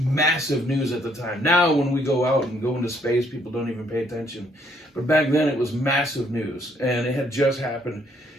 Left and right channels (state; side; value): normal; both; correlation 0.68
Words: news at the time. Now, when we go out and go into space, people don't even pay attention. But back then, it was massive news, and it had just happened.